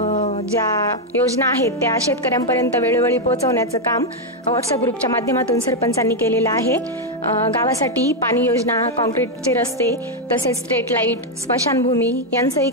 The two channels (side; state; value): both; normal; correlation 0.02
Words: ज्या योजना आहेत त्या शेतकऱ्यांपर्यंत वेळोवेळी पोहोचवण्याचं काम व्हॉट्सअप ग्रुपच्या माध्यमातून सरपंचांनी केलेलं आहे. गावासाठी पाणी योजना, कॉन्क्रीटचे रस्ते, तसेच स्ट्रीट लाईट, स्मशानभूमी यांचंही